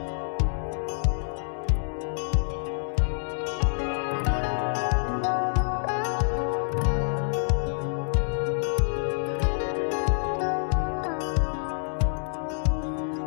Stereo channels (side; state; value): right; silent; digital silence